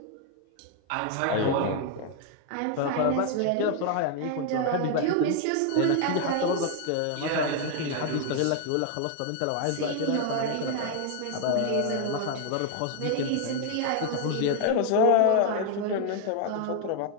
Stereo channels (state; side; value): different; both; correlation 0.00